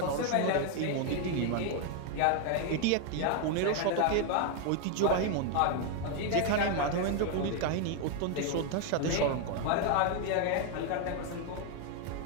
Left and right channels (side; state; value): both; different; correlation 0.01